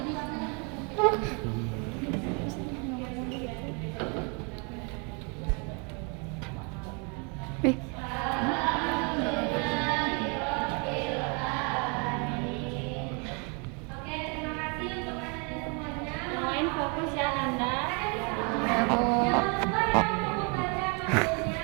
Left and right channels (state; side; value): quieter; left; 34.7 dB